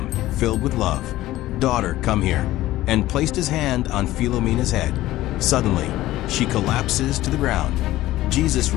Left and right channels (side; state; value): right; quieter; 15.9 dB